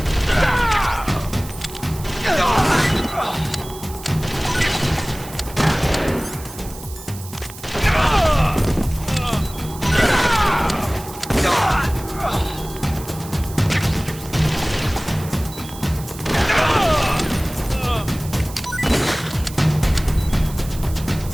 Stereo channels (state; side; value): noise; right; hiss, 16 dB below the sound